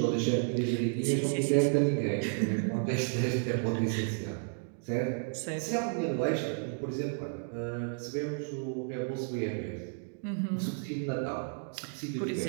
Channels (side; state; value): left; silent; 56 dB below the other